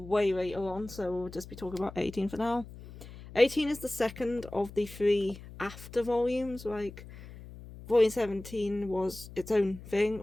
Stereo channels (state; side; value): noise; left; hum, 16 dB below the sound